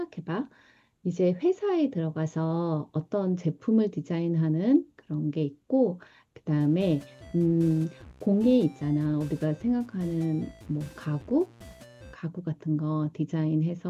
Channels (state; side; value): identical; both; correlation 1.00